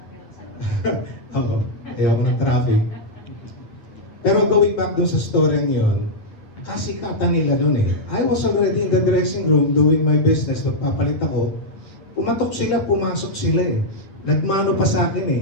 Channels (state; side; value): late; right; 9.4 ms